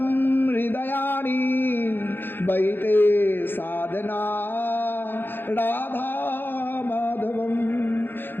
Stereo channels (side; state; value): right; late; 0.099 ms